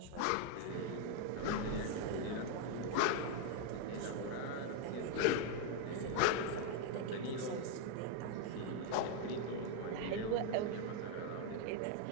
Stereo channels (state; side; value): different; both; correlation 0.01